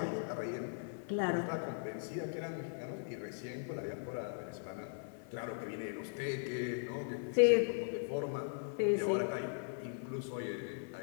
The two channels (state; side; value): silent; right; digital silence